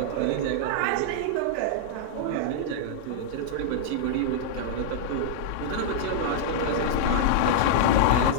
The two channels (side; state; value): both; different; correlation -0.01